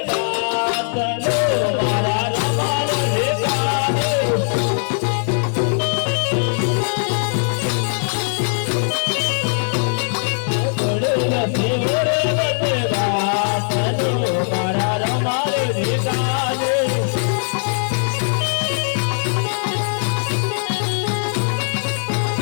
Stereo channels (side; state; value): right; silent; digital silence